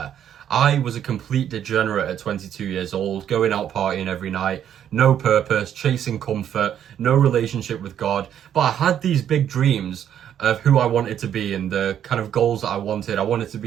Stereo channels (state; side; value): quieter; left; 9.8 dB